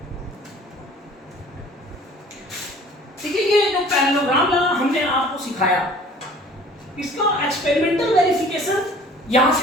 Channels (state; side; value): normal; both; correlation 0.50